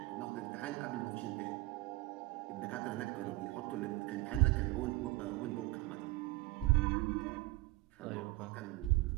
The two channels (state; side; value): quieter; left; 20.3 dB